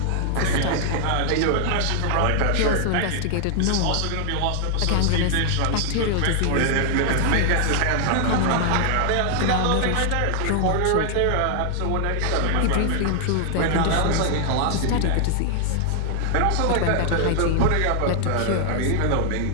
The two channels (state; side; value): different; both; correlation 0.00